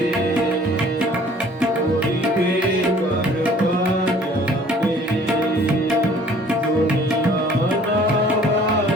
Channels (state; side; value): normal; both; correlation 0.54